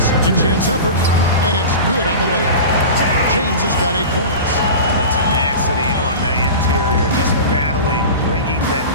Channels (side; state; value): both; inverted; correlation -0.31